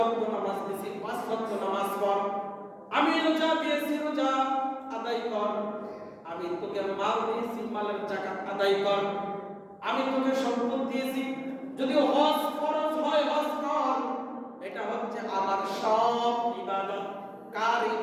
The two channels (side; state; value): both; identical; correlation 1.00